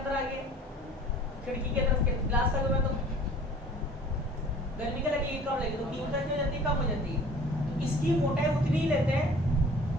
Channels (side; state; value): both; normal; correlation 0.48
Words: आ गए, खिड़की के तरफ ग्लास लगे हुए, तो गर्मी क्या लगेगी? कम लगेगी, तो तीव्रता क्या हो जाती है? कम हो जाती है। तो इसकी मोटाई उतनी ही लेते हैं